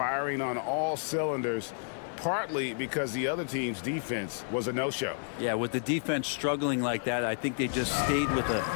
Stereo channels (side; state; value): right; silent; 57 dB below the other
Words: on all cylinders, partly because the other team's defense was a no-show. Yeah, with the defense struggling like that, I think they just stayed with a